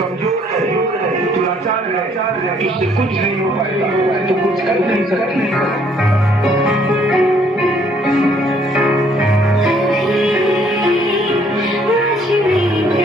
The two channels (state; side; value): normal; both; correlation 0.64